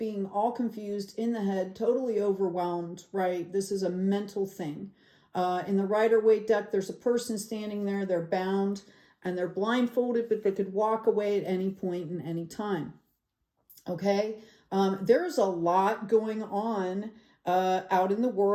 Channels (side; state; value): both; identical; correlation 1.00